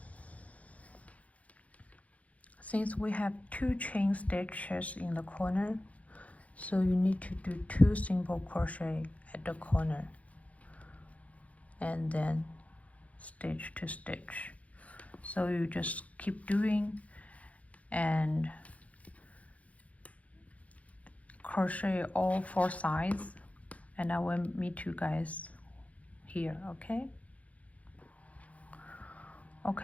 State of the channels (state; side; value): late; right; 0.067 ms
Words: since we have 2 chain stitches in the corner, so you need to do 2 single crochet at the corner and then stitch to stitch. So you just keep doing and crochet all 4 sides, and I will meet you guys here. Okay,